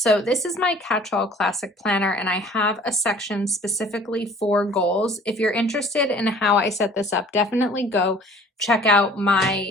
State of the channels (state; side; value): normal; both; correlation 0.50